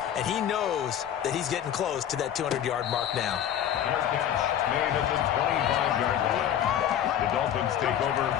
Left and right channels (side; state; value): right; quieter; 10.2 dB